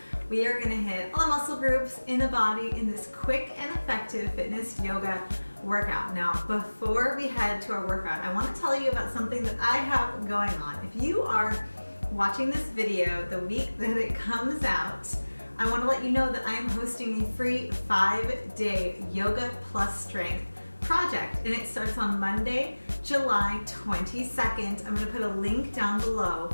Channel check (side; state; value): both; inverted; correlation -1.00